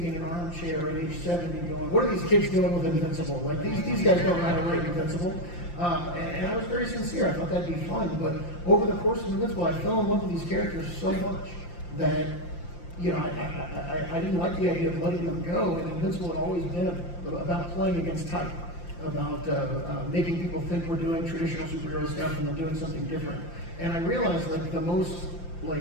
in an armchair at age 70 going, what are these kids doing with Invincible? Like, these guys don't know how to write Invincible. And I was very sincere. I thought that'd be fun. But over the course of Invincible, I fell in love with these characters so much that, I didn't like the idea of letting them go. And Invincible had always been about playing against type, about making people think we're doing traditional superhero stuff and then doing something different. And I realized that the most,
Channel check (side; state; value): right; late; 5.8 ms